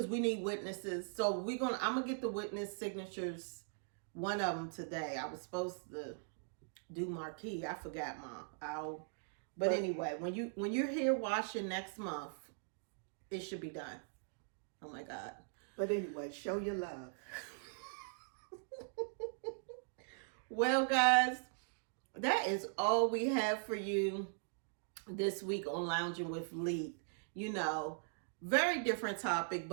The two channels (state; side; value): silent; left; digital silence